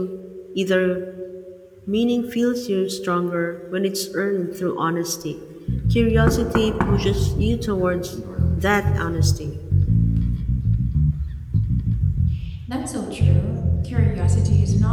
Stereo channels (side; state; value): both; identical; correlation 1.00